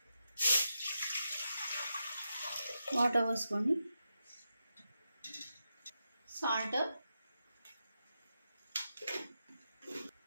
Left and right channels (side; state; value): both; inverted; correlation -0.87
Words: వాటర్ పోసుకోండి. సాల్ట్,